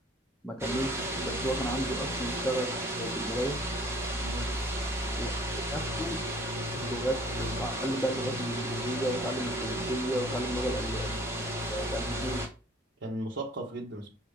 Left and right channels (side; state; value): both; normal; correlation 0.53